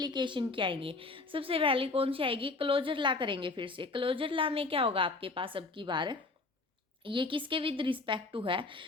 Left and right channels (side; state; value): right; quieter; 3.6 dB